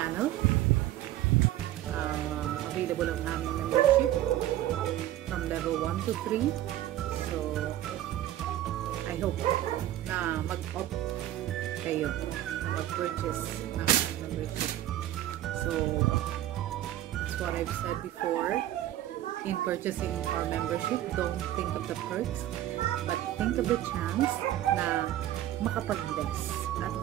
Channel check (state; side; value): quieter; left; 13.5 dB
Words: Available ang aming membership from level 1 to 3. So, I hope na mag-opt kayo na mag-purchase ng membership. So, that's what I've said before. In purchasing our membership, don't think of the perks, but think of the chance na makapag-bless at